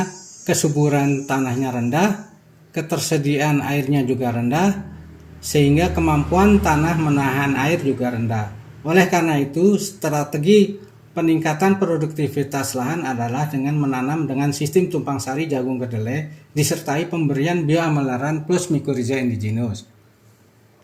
kesuburan tanahnya rendah, ketersediaan airnya juga rendah, sehingga kemampuan tanah menahan air juga rendah. Oleh karena itu, strategi peningkatan produktivitas lahan adalah dengan menanam dengan sistem tumpang sari jagung kedelai disertai pemberian bioamelaran plus Mycorrhiza indigenous.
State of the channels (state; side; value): identical; both; correlation 1.00